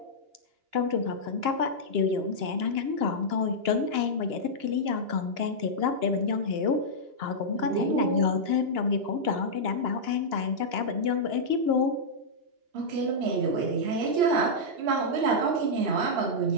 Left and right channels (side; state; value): left; late; 2.9 ms